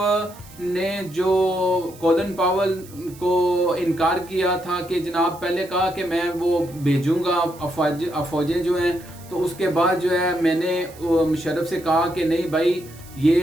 نے جو کولن پاول کو انکار کیا تھا کہ جناب پہلے کہا کہ میں وہ بھیجوں گا افواجیں جو ہیں, تو اس کے بعد جو ہے میں نے مشرف سے کہا کہ نہیں بھائی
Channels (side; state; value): right; noise; hiss, 22 dB below the sound